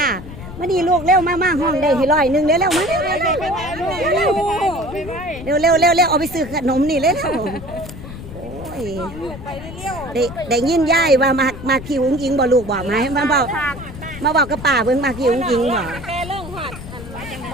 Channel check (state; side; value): noise; left; rumble, 12 dB below the sound